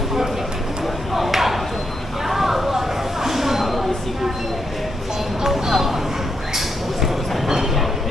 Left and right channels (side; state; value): both; normal; correlation 0.81